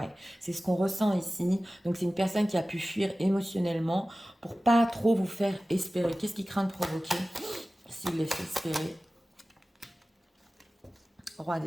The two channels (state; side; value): normal; both; correlation 0.96